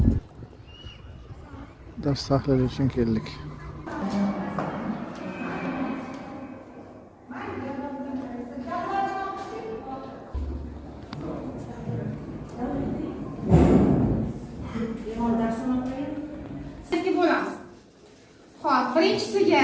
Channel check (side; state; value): both; identical; correlation 1.00